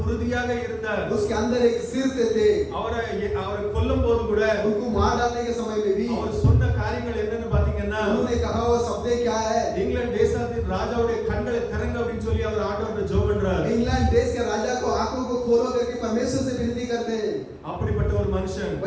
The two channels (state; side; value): identical; both; correlation 1.00